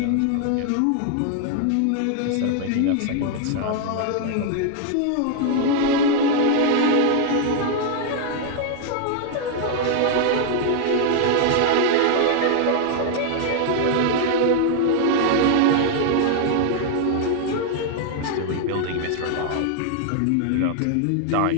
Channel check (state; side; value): different; both; correlation 0.00